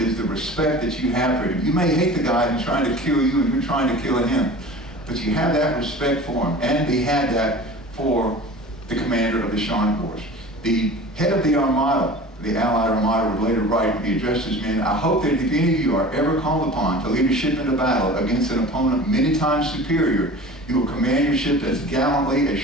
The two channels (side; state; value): both; normal; correlation 0.39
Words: is the respect that you have for him. You may hate the guy who's trying to kill you and you're trying to kill him, but you have that respect for him. And they had that for the commander of the Scharnhorst. The head of the Armada, the Allied Armada, would later write, he addressed his men, I hope that if any of you are ever called upon to lead a ship into battle against an opponent many times superior, you will command your ship as gallantly as